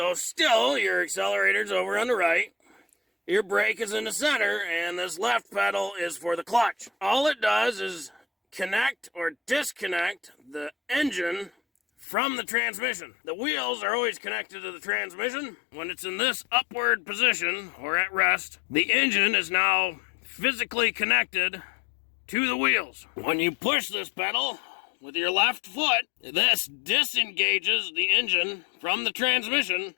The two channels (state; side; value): drops out; right; at 12.1 s